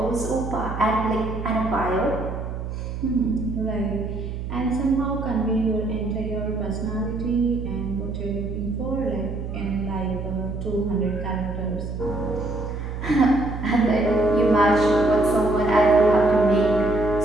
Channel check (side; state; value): right; noise; hum, 6 dB below the sound